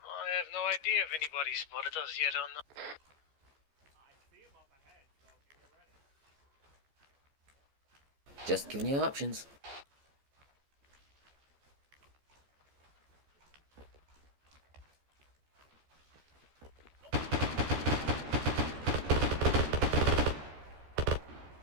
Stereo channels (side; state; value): left; late; 14 ms